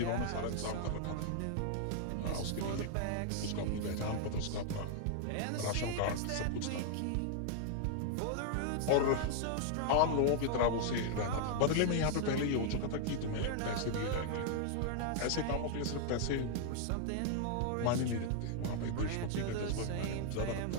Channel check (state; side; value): different; both; correlation 0.00